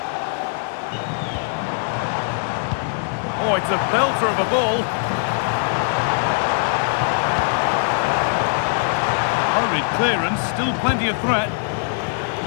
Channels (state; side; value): silent; right; digital silence